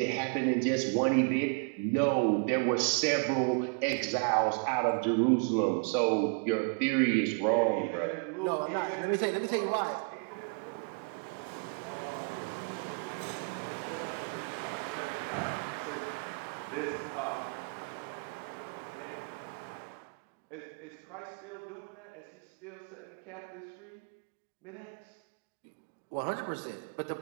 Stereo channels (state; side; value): quieter; left; 38.6 dB